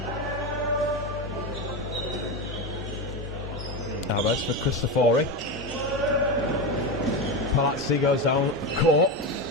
Albers for Cristofori. Palazzi goes down court.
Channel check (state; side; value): normal; both; correlation 0.17